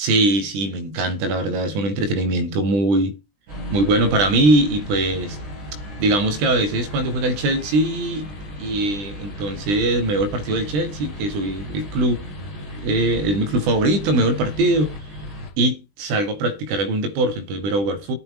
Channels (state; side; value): late; left; 20 ms